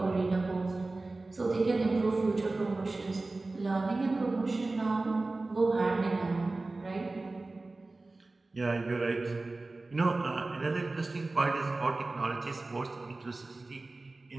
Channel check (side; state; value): left; quieter; 3.2 dB